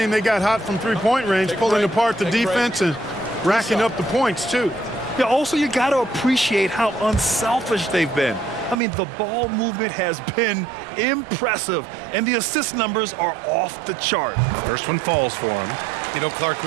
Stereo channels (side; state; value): left; drops out; at 8.8 s